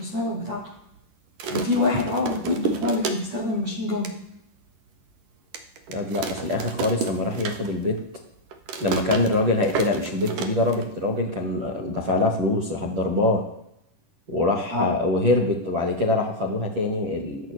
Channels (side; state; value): left; late; 11 ms